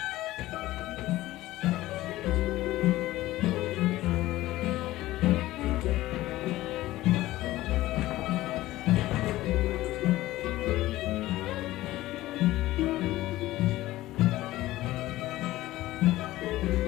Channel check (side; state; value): right; quieter; 16.5 dB